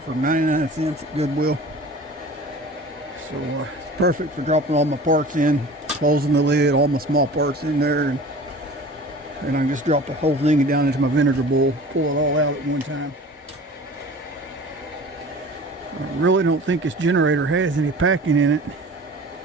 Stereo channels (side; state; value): both; normal; correlation 0.41